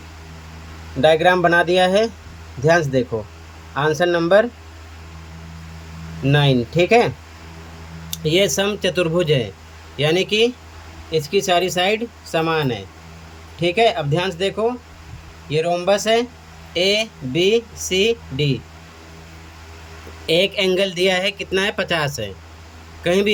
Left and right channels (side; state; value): both; identical; correlation 1.00